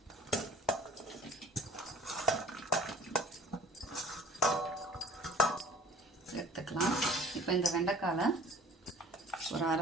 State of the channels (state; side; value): normal; both; correlation 0.48